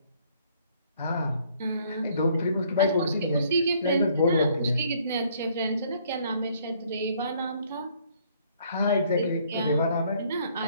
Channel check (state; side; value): inverted; both; correlation -0.63